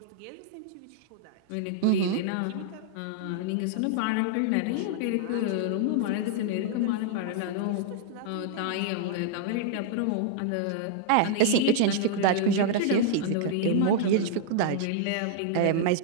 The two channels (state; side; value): different; both; correlation -0.01